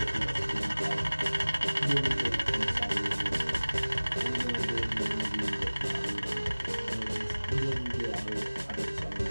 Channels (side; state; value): both; inverted; correlation -1.00